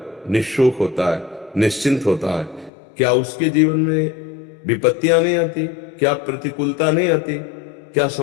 निःशोक होता है, निश्चिंत होता है। क्या उसके जीवन में विपत्तियां नहीं आती? क्या प्रतिकूलता नहीं आती? क्या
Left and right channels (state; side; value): drops out; right; at 2.7 s